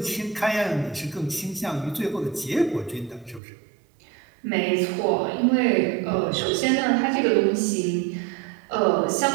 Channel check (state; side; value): drops out; left; at 3.4 s